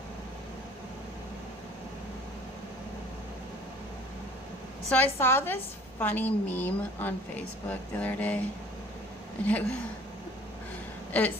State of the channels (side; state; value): both; normal; correlation 0.51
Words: So I saw this funny meme on Facebook the other day. And it